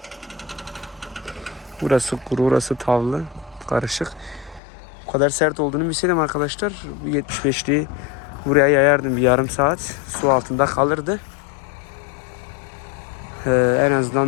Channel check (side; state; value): right; drops out; at 4.6 s